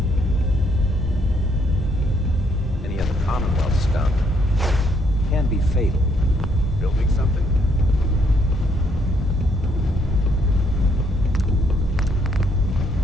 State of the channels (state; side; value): normal; both; correlation 0.70